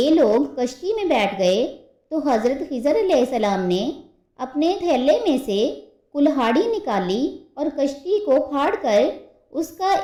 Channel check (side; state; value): both; identical; correlation 1.00